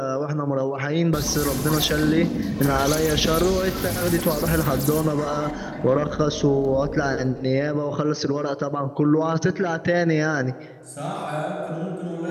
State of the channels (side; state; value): both; identical; correlation 1.00